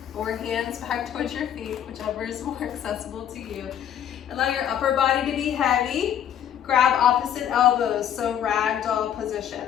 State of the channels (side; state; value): right; quieter; 9.9 dB